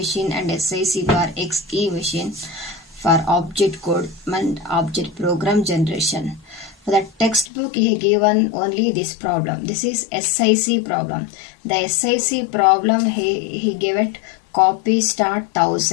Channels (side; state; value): right; drops out; at 7.5 s